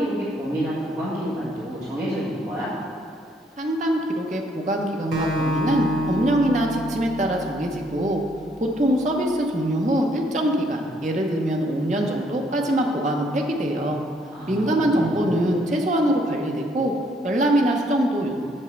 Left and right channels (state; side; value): normal; both; correlation 0.68